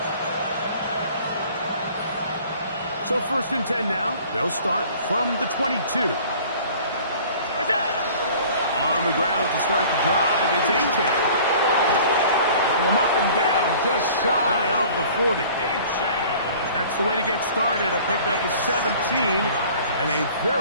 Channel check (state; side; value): inverted; both; correlation -0.48